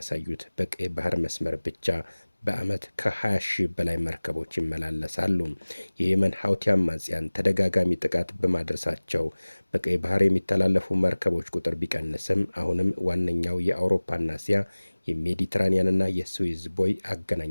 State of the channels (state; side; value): inverted; both; correlation -1.00